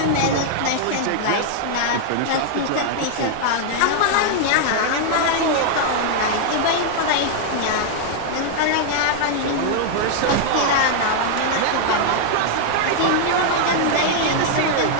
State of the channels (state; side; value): different; both; correlation -0.01